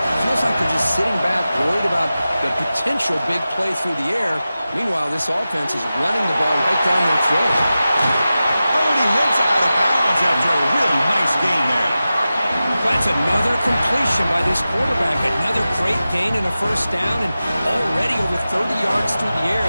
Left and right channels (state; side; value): inverted; both; correlation -0.94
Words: feels like they're just sitting back, worried about the potential big play through the air. Meanwhile, this offense is running the ball right down their throat. Oh, and he hits out of bounds after a really nice gain there. That's another completion by this quarterback. Another great gain in a 1st down, and already over 30 yards through the air.